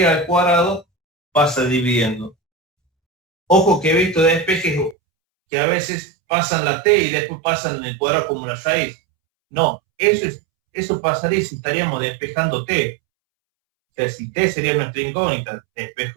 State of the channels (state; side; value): drops out; left; at 5.0 s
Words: al cuadrado pasa dividiendo. Ojo que he visto despejes que a veces pasan la t y después pasan el cuadrado como una raíz. No, eso pasaría si estaríamos despejando t. O sea, si t sería nuestra incógnita,